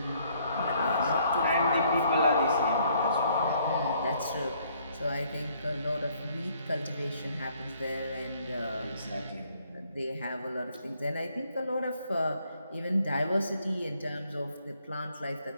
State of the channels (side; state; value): both; inverted; correlation -0.66